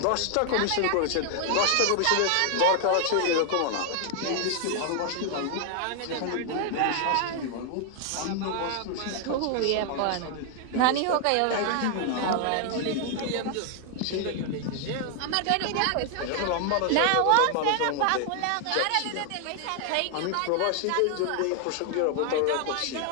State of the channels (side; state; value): both; different; correlation 0.00